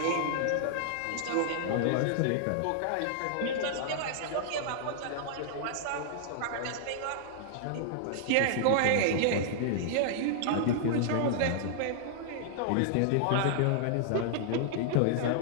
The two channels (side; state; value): both; different; correlation -0.01